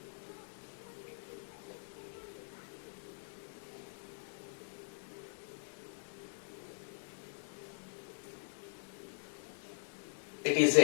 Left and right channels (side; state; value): right; silent; digital silence